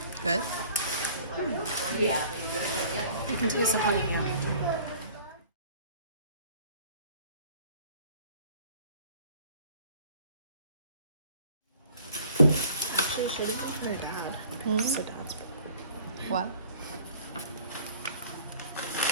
Good. You can taste the honey. Yeah. Actually, should we put her dad? It's her dad's brother. What?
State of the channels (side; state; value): both; inverted; correlation -0.52